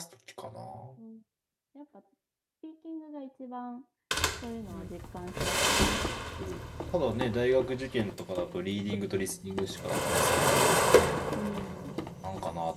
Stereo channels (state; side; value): identical; both; correlation 1.00